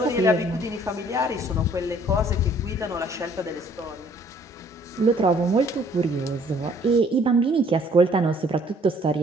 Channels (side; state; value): both; normal; correlation 0.60